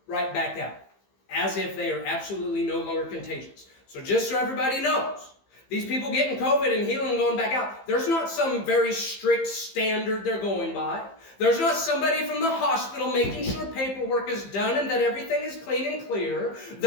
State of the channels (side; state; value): right; late; 15 ms